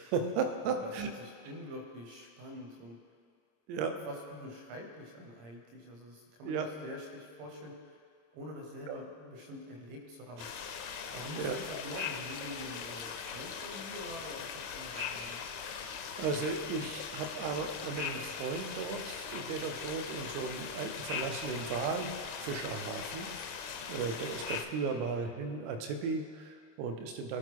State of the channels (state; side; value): late; left; 25 ms